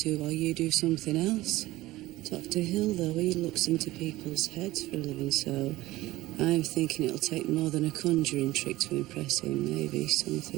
while you do something else. Dr. Hill, though, he looks into people's heads for a living, so I'm thinking it'll take more than a conjuring trick to impress him. Maybe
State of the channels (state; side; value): quieter; left; 17.6 dB